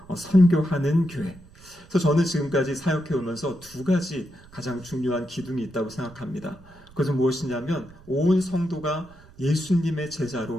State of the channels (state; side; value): noise; right; rumble, 23 dB below the sound